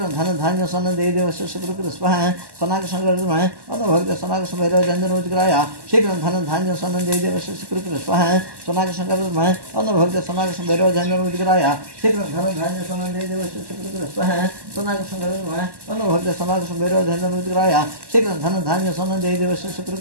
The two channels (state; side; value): late; left; 1.1 ms